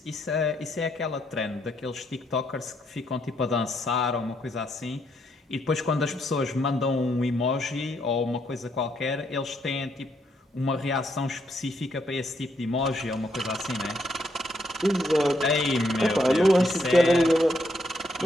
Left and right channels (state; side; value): normal; both; correlation 0.75